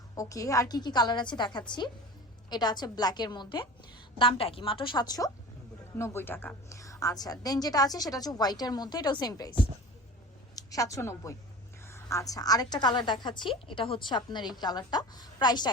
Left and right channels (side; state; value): both; normal; correlation 0.37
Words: ওকে, আর কি কি কালার আছে দেখাচ্ছি। এটা আছে ব্ল্যাকের মধ্যে, দামটা কি? মাত্র 790 টাকা। আচ্ছা, দেন যেটা আছে সেটা হচ্ছে হোয়াইটের মধ্যে, এটাও সেম প্রাইস 790। আচ্ছা, আরেকটা কালার দেখাচ্ছি। এটা হচ্ছে আপনার এই কালারটা, প্রাইসটা